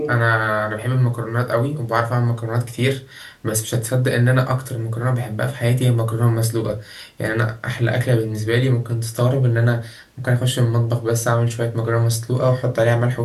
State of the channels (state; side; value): identical; both; correlation 1.00